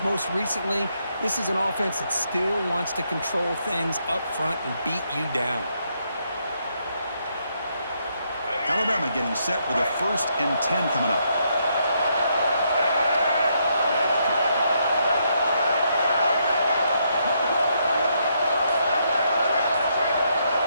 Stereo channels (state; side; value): inverted; both; correlation -0.76